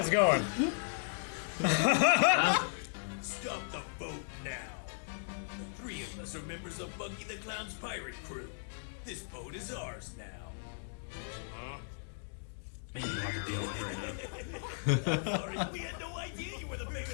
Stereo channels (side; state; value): right; silent; digital silence